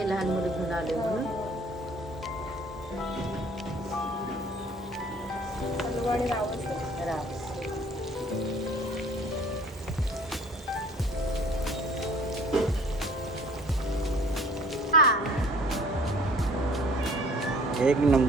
लहान मुलं घेऊन आले म्हणून. हलवा आणि रावस. राव. एक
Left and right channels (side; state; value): both; normal; correlation 0.53